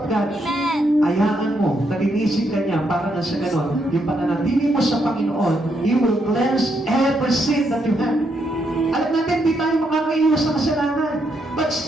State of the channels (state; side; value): normal; both; correlation 0.78